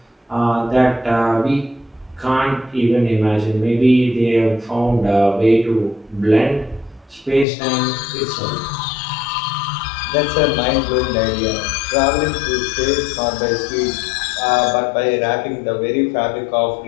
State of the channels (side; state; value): right; drops out; at 7.5 s